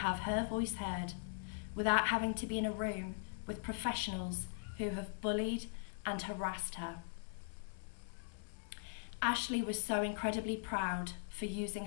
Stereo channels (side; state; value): right; silent; 51 dB below the other